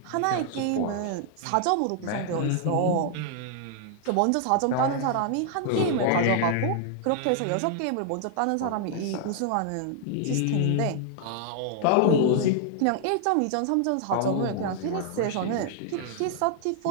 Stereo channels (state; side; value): different; both; correlation -0.01